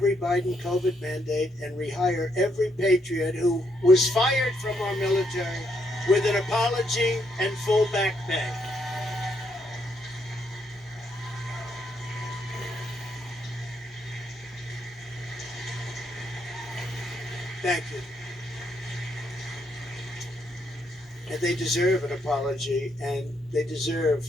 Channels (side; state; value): both; normal; correlation 0.76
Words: Biden COVID mandate and rehire every patriot who was fired from our military with an apology and full back pay. Thank you. And they deserve an apology, and they deserve